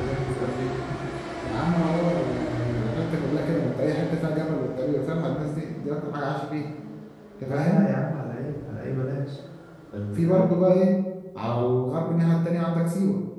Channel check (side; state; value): both; identical; correlation 1.00